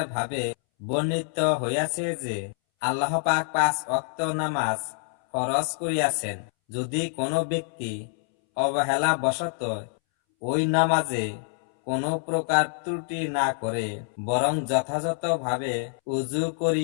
ভাবে বর্ণিত হইয়াছে যে আল্লাহ পাক 5 ওয়াক্ত নামাজ ফরজ করিয়াছেন। যদি কোনো ব্যক্তি অবহেলা বশত ওই নামাজে কোনো প্রকার ত্রুটি না করে, বরং যথাযথভাবে উযু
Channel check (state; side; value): silent; right; 61 dB below the other